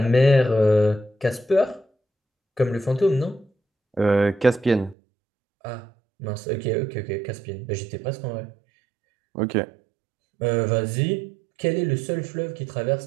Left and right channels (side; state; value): left; drops out; at 5.0 s